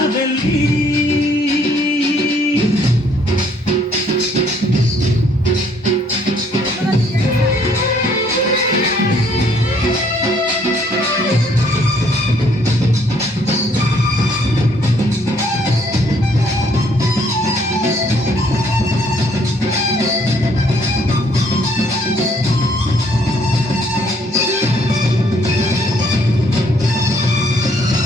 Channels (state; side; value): normal; both; correlation 0.65